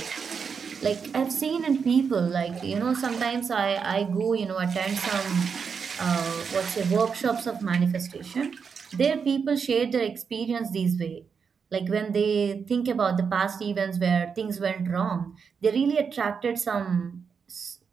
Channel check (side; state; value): left; quieter; 6.1 dB